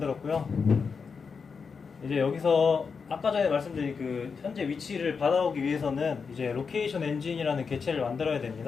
이제 여기서 아까 전에 말씀드린 그 현재 위치를 받아오기 위해서는 이제 로케이션 엔진이라는 객체를 만들어야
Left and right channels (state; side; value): quieter; right; 5.5 dB